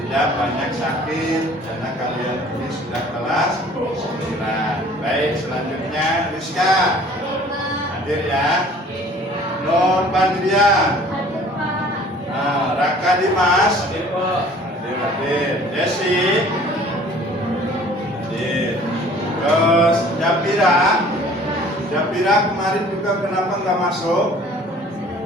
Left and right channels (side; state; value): both; normal; correlation 0.51